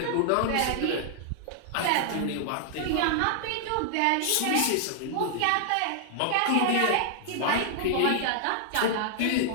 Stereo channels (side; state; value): both; different; correlation -0.01